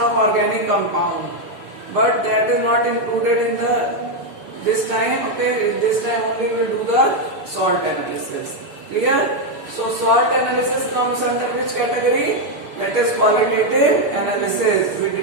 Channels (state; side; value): late; left; 6.9 ms